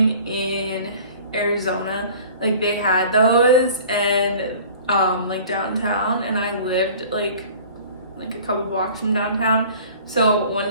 in Arizona, like they had those and like downtown, and I lived like a couple blocks from downtown. So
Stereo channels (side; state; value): both; inverted; correlation -0.46